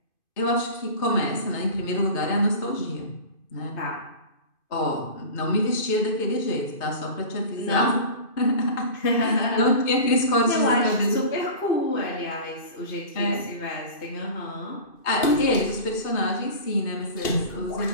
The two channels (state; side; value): late; right; 2.5 ms